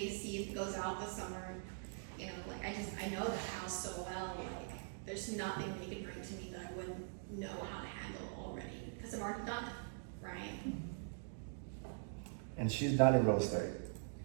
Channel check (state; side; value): silent; left; digital silence